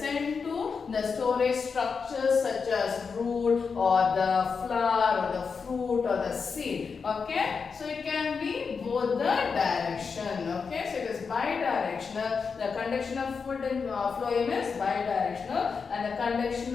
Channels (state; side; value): quieter; right; 5.4 dB